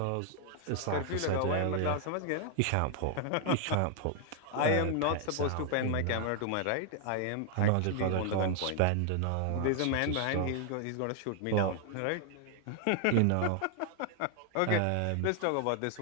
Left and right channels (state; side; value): different; both; correlation 0.00